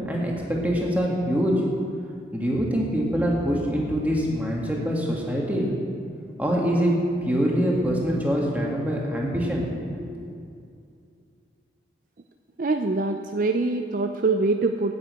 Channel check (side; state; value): both; normal; correlation 0.69